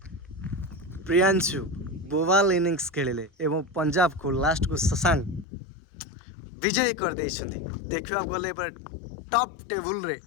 प्रियांशु बोवाल इनिंग्स खेलिले एवं पंजाब को लास्ट को शशांक विजय कर देइछन्ति देखिबा गले पर टॉप टेबल रे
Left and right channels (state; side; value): drops out; right; at 5.5 s